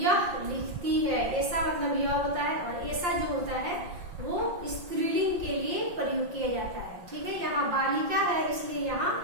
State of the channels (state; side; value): late; left; 5.7 ms